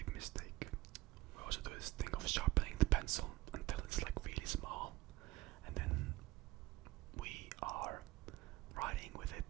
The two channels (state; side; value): quieter; left; 18.0 dB